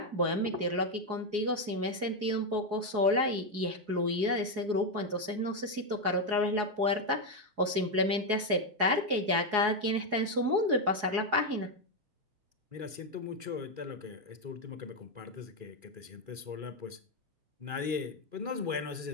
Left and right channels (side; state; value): left; late; 4.7 ms